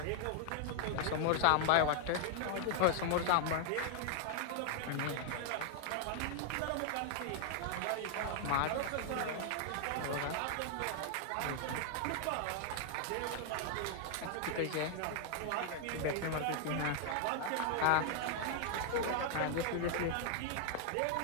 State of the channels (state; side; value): different; both; correlation 0.00